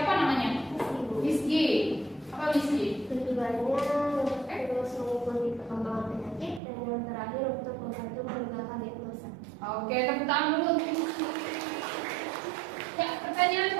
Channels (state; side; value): drops out; left; at 6.6 s